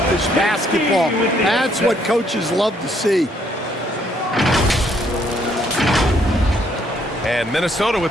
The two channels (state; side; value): normal; both; correlation 0.69